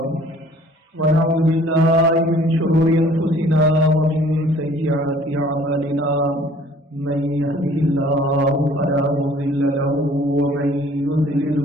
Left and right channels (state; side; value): normal; both; correlation 0.54